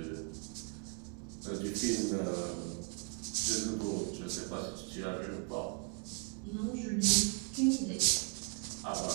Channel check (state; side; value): quieter; left; 38.1 dB